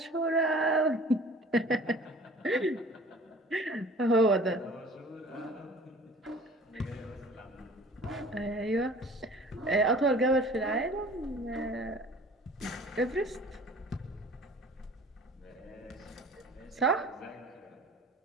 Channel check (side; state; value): both; normal; correlation 0.47